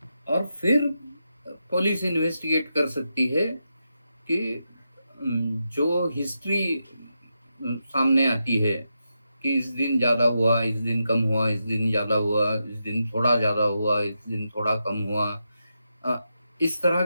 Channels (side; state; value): both; inverted; correlation -0.86